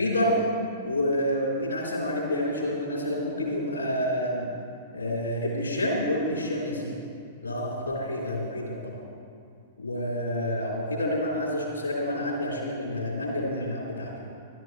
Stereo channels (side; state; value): both; inverted; correlation -0.47